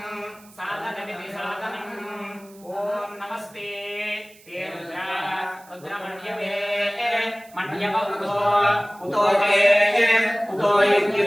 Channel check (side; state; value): right; noise; hiss, 25 dB below the sound